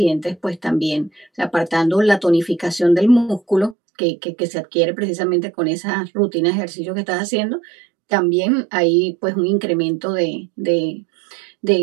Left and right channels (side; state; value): left; drops out; at 3.8 s